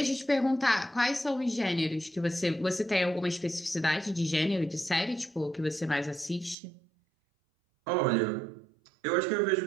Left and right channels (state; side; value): drops out; left; at 6.6 s